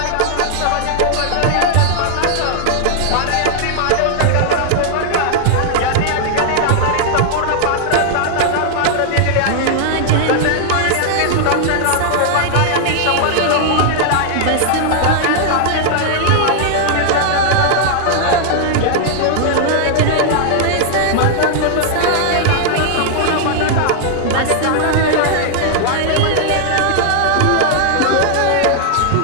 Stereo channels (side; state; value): both; different; correlation 0.00